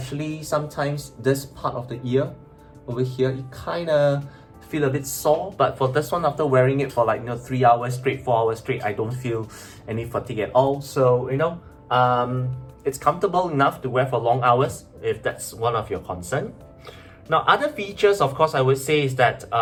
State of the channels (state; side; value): identical; both; correlation 1.00